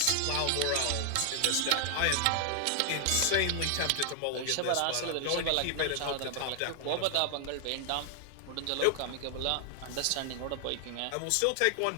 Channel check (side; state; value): both; different; correlation 0.00